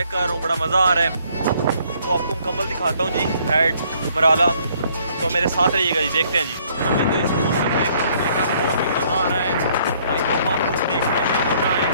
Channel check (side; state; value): both; inverted; correlation -0.64